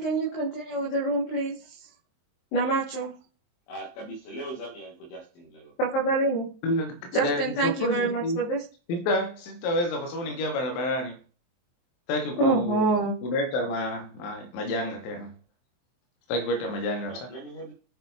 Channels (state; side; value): late; right; 23 ms